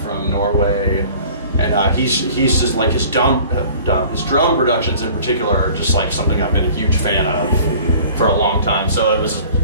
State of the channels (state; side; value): inverted; both; correlation -0.47